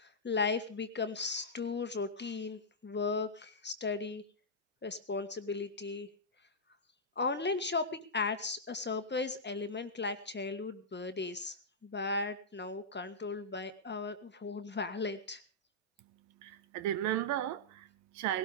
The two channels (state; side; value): normal; both; correlation -0.11